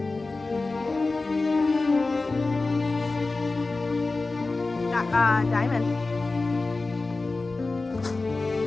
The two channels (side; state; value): right; quieter; 3.5 dB